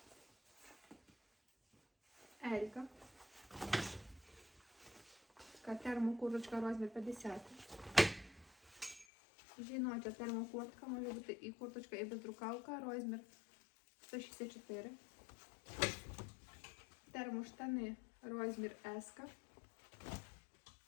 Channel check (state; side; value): drops out; right; at 9.1 s